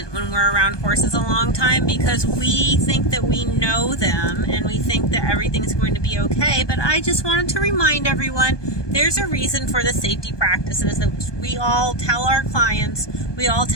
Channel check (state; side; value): late; right; 1.2 ms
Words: when we're around horses a long time because we think that we know them and we think that everything's going to be okay. But I just wanted to remind everyone there's a reason for the safety practices that we all tell our clients, we all